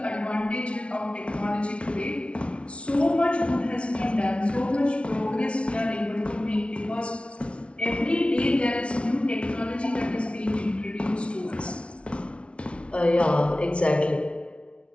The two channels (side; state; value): right; late; 0.060 ms